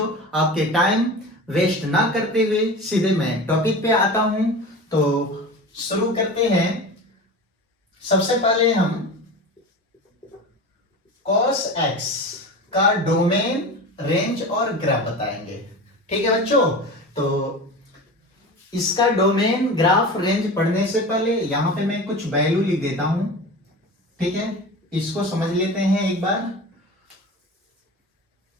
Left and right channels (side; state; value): both; normal; correlation 0.31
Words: आपके टाइम वेस्ट ना करते हुए सीधे मैं टॉपिक पे आता हूं। तो शुरू करते हैं। सबसे पहले हम cos x का डोमेन, रेंज और ग्राफ बताएंगे। ठीक है बच्चों। तो इसका डोमेन, ग्राफ, रेंज पढ़ने से पहले यहां पे मैं कुछ वैल्यू लिख देता हूं। ठीक है, इसको समझ लेते हैं एक बार।